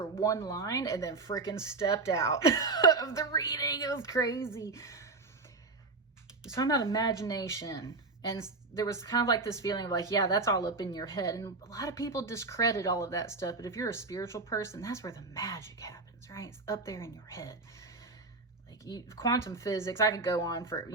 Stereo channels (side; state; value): left; quieter; 3.7 dB